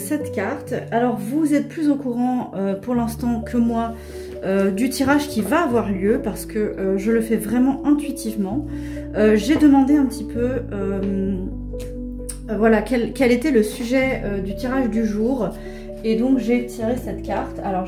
carte. Alors vous êtes plus au courant pour l'instant que moi du tirage qui va avoir lieu parce que je le fais vraiment intuitivement. J'ai demandé un petit peu voilà quel était le sujet du tirage du jour. Et donc j'ai tiré cette carte. Alors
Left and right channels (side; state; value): both; identical; correlation 1.00